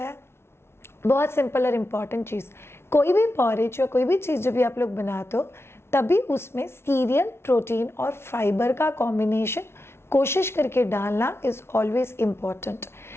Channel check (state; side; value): late; right; 0.12 ms